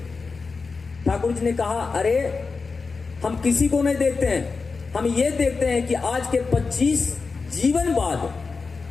ठाकुर जी ने कहा, अरे हम किसी को नहीं देखते हैं, हम ये देखते हैं कि आज के 25 जीवन बाद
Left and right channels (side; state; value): right; quieter; 4.5 dB